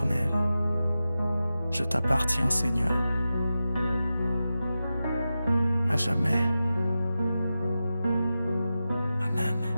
Je t'appartiens Seigneur, à jamais. Amen.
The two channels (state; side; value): inverted; both; correlation -0.92